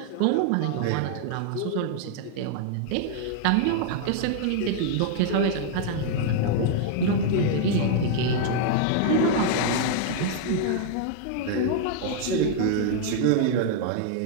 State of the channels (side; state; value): both; different; correlation 0.00